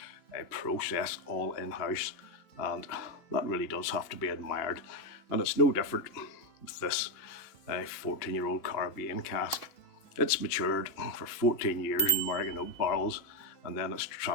process all in-house, and that really does have to be admired. And it's no different with this 14-year-old Caribbean Cask. It's matured for 14 years in American oak barrels, and then it's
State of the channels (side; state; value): right; late; 2.6 ms